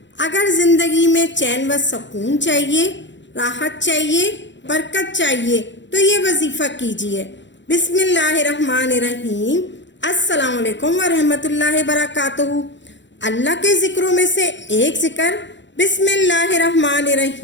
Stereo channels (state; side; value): late; right; 0.53 ms